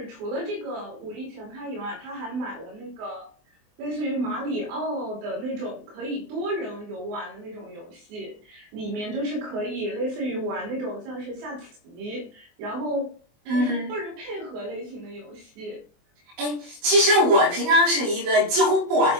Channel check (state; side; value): late; left; 24 ms